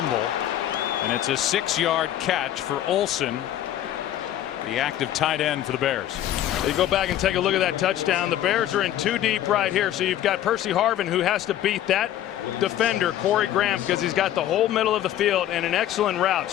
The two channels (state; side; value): quieter; right; 12.2 dB